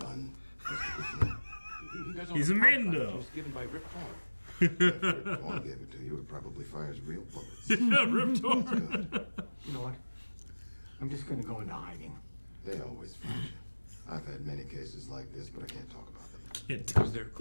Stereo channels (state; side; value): inverted; both; correlation -1.00